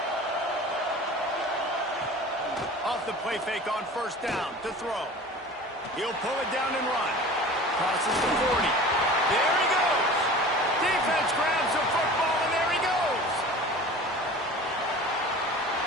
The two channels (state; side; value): normal; both; correlation 0.39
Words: Off the play fake on first down to throw. He'll pull it down and run. Crosses the 40. There he goes. Defense grabs the football, and there he goes.